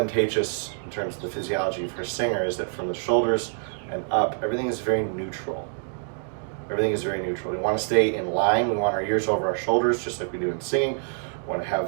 in terms of the physiology for a singer is that from the shoulders and up, everything is very neutral. Everything is very neutral. We want to stay in line. We want our ears over our shoulders, just like we do in singing. We want to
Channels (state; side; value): silent; left; 61 dB below the other